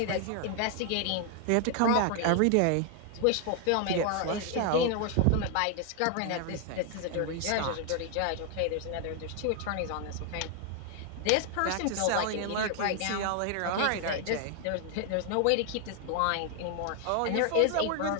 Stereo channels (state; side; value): different; both; correlation 0.00